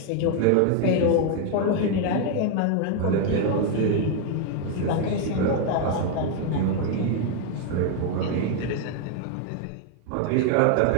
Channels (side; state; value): both; different; correlation 0.01